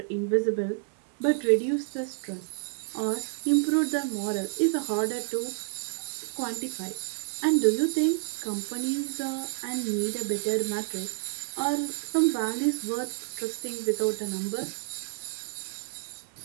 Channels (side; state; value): left; silent; digital silence